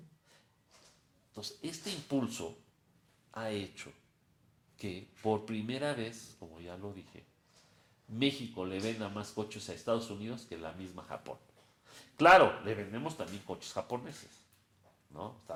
Entonces, este impulso ha hecho que por primera vez, como ya lo dije, México le venda más coches a Estados Unidos que la misma Japón. Claro, le vendemos también coches japoneses, ¿no?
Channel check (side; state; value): both; identical; correlation 1.00